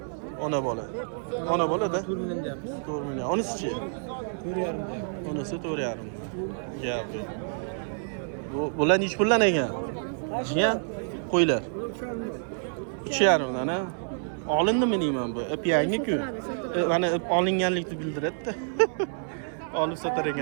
Ona bola. Ona bola-da 4 million deyapmiz. 4 million. Onisi-chi? 4.5. Onisi 4,5. Gap yo'q. Bular nech puldan ekan? Jiyan qo'ylar. 3,5 dan, ha? Olindimi deyman bu? Ip yangi-ku. Mana ip olinganlikni bildiradi-da. Olib sotar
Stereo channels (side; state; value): left; silent; 59 dB below the other